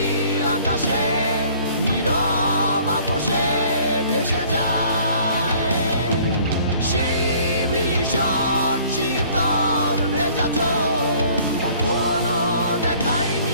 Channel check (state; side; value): inverted; both; correlation -0.55